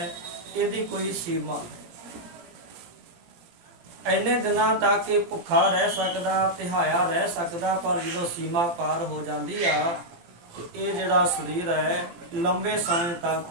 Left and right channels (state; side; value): late; left; 17 ms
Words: ਇਹਦੀ ਕੋਈ ਸੀਮਾ ਹੈ। ਇੰਨੇ ਦਿਨਾਂ ਤੱਕ ਇਹ ਭੁੱਖਾ ਰਹਿ ਸਕਦਾ, ਤਿਹਾਇਆ ਰਹਿ ਸਕਦਾ, ਪਰ ਜਦੋਂ ਸੀਮਾ ਪਾਰ ਹੋ ਜਾਂਦੀ ਆ ਤੇ ਇਹ ਜਿਹੜਾ ਸਰੀਰ ਹੈ ਲੰਬੇ ਸਮੇਂ ਤੱਕ